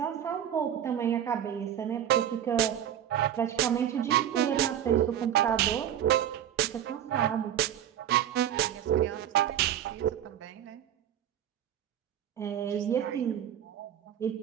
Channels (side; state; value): left; quieter; 10.5 dB